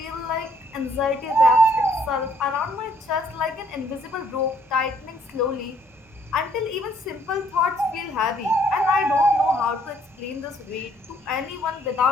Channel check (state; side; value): normal; both; correlation 0.65